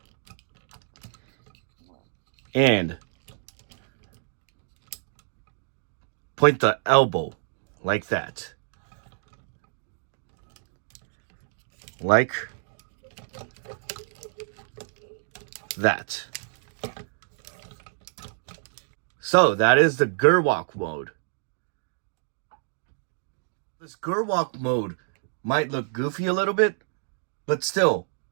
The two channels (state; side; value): silent; left; digital silence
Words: And point the elbow like that. Like that. So that is the Gerwalk mode. This Gerwalk mode might look goofy a little bit, but still